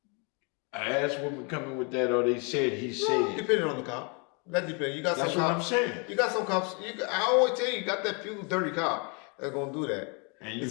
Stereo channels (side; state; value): right; quieter; 34.5 dB